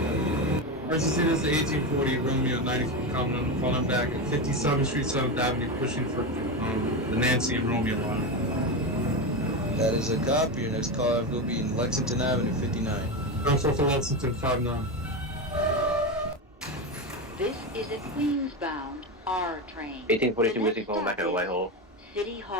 First is the 1840 Romeo 90 calling back at 57th Street, 7th Avenue, pushing for the Nancy and Romeo line. That is a copy. Your next call will be in Lexington Avenue, 59. Go for Lexington, 59. This is a Queens-bound R train. 1842 Whiskey calling back at Whitehall. City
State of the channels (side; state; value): both; normal; correlation 0.16